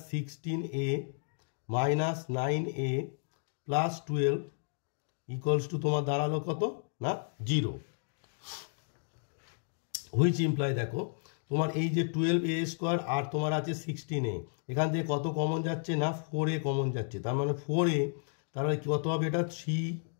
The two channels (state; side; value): silent; right; digital silence